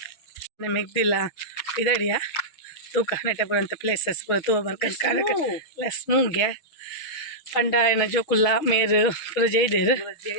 ಮೆಗ್ದಿಲ್ಲ ಪಿದಾಡಿಯ ತೂಕ ನೆಟಪುರ ಅಂತ ಪ್ಲೇಸಸ್ ಪೂರ ತೂವ ಬರ್ಕಂದು ಕಾರಕ ಸ್ಮೂಗೆ ಪಂಡ ಏನ ಜೋಕುಲ್ಲ ಮೇರು ಪೂರ ಜೈದೇರು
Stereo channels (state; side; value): late; right; 6.3 ms